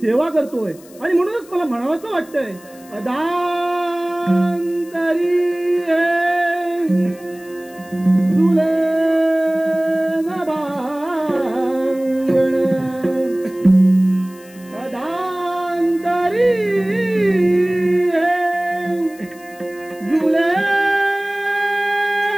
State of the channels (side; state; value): left; noise; hiss, 24 dB below the sound